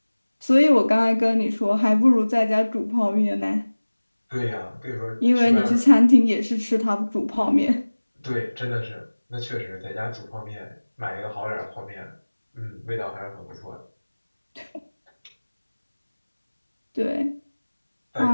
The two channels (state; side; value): inverted; both; correlation -1.00